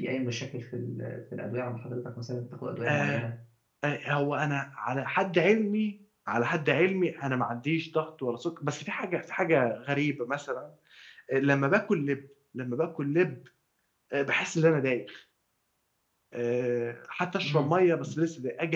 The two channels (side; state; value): both; identical; correlation 1.00